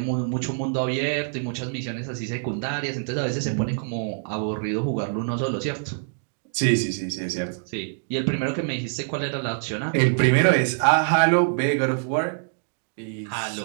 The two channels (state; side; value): silent; left; digital silence